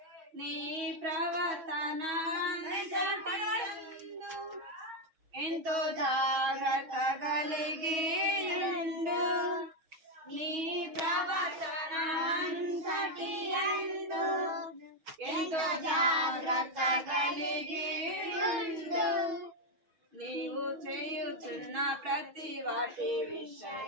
నీ ప్రవర్తన ఎంతో జాగ్రత్త కలిగి ఉండు. నీ ప్రవర్తన అంతటి యందు ఎంతో జాగ్రత్త కలిగి ఉండు. నీవు చేయుచున్న ప్రతి వాటి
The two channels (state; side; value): late; left; 6.2 ms